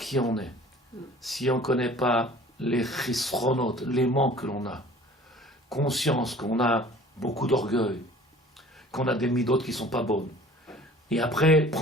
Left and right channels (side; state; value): both; normal; correlation 0.48